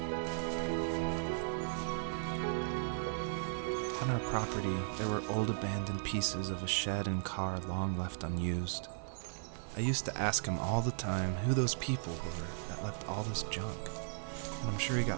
On our property, there were old abandoned pieces of a shed and car long left unused. I used to ask him all the time who those people were that left all this junk, and I'm sure he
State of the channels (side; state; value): left; silent; 53 dB below the other